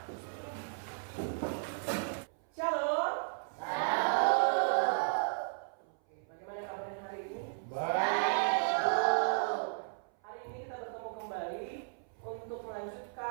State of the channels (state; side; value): silent; left; 55 dB below the other